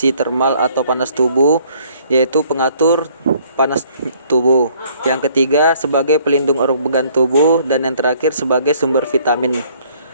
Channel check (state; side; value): inverted; both; correlation -0.61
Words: termal atau panas tubuh, yaitu pengatur panas tubuh. Yang ketiga, sebagai pelindung organ tubuh. Dan yang terakhir, sebagai sumber vitamin